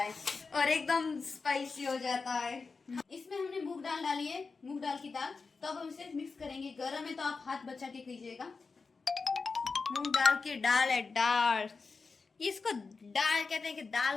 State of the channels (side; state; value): right; quieter; 4.5 dB